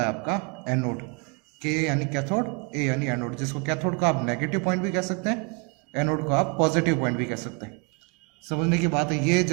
आपका एनोड। के यानी कैथोड, ए यानी एनोड, जिसको कैथोड का आप नेगेटिव पॉइंट भी कह सकते हैं, एनोड को आप पॉजिटिव पॉइंट भी कह सकते हैं। समझने की बात है, ये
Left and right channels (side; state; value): left; quieter; 32.9 dB